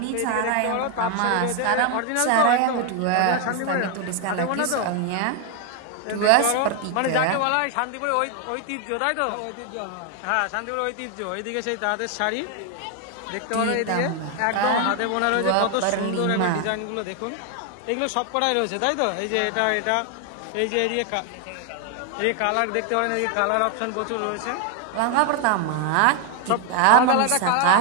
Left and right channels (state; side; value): different; both; correlation 0.01